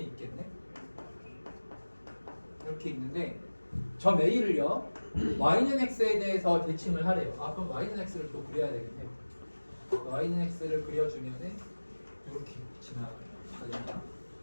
있겠네. 이렇게 있는데 점 A를요 y는 x에 대해서 대칭을 하래요. 그럼 y는 x를 또 그려야 되겠네. y는 x를 그려주면은 이렇게 지나가겠다.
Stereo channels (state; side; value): inverted; both; correlation -1.00